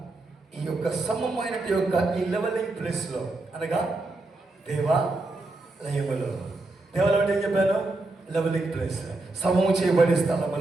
ఈ యొక్క సమమైన ఈ లెవెలింగ్ ప్లేస్ లో, అనగా దేవాలయములో, దేవాలయం అంటే ఏం చెప్పాను? లెవెలింగ్ ప్లేస్, సమము చేయబడే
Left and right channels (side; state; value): left; quieter; 3.0 dB